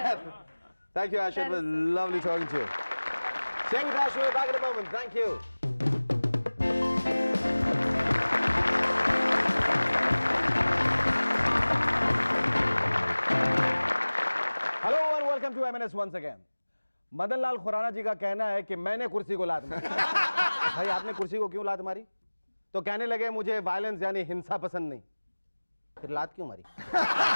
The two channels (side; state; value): both; inverted; correlation -1.00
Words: Thank you, Asha. It That was is so lovely talking to you. Stay with us. We'll be back in a moment. Thank you. Hello and welcome to MNS once again. Madan Lal Khurana ji का कहना है कि मैंने कुर्सी को लात मारी। भाई आपने कुर्सी को क्यों लात मारी? तो कहने लगे मुझे वायलेंस यानी हिंसा पसंद नहीं। फिर लात क्यों मारी?